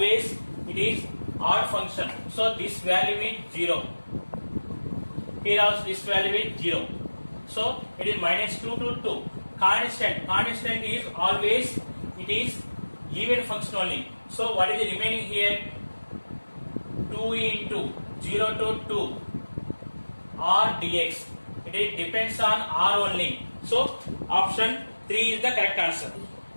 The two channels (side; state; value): both; inverted; correlation -1.00